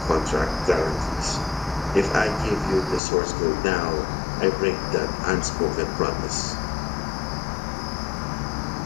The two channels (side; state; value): right; drops out; at 3.0 s